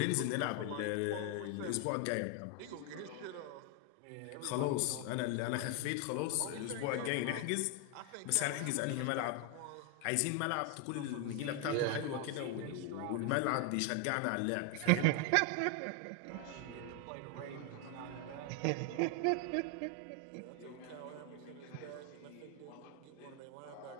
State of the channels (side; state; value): both; different; correlation 0.01